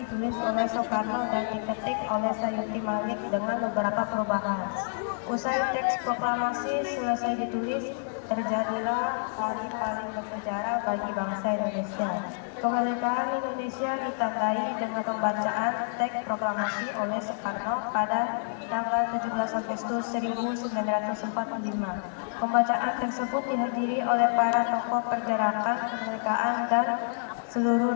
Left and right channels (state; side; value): silent; right; digital silence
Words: oleh Soekarno dan diketik oleh Sayuti Malik dengan beberapa perubahan. Usai teks proklamasi selesai ditulis, terjadilah hari paling bersejarah bagi bangsa Indonesia. Kemerdekaan Indonesia ditandai dengan pembacaan teks proklamasi oleh Soekarno pada tanggal 17 Agustus 1945. Pembacaan tersebut dihadiri oleh para tokoh pergerakan kemerdekaan dan seluruh